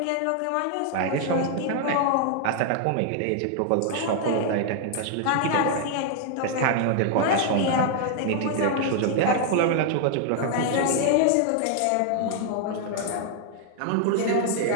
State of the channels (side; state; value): both; different; correlation 0.00